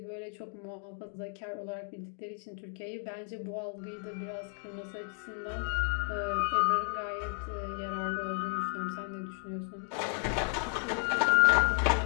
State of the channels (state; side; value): quieter; right; 35.0 dB